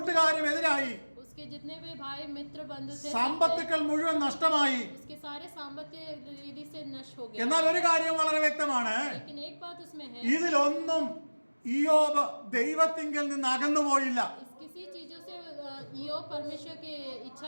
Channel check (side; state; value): both; inverted; correlation -1.00